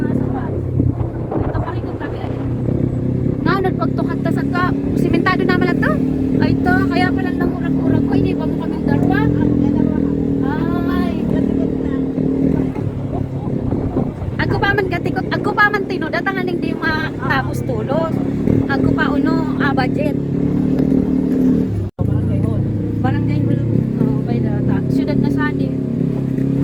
sapa. Ito pa rin kong tabi ay. Nga, nagpagtukat ta sa ka. Simentado naman lang to. Ay ito, kaya pala nang urag-urag ko. Hindi pa mo kaming darwa. Ay. Ako pa man gatikot. Ako pa man tino. Datangan hindi matapos tulos. Ako pa uno, budget. Barangay Hulu. Oh, by the siyudad na sani.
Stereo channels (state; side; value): identical; both; correlation 1.00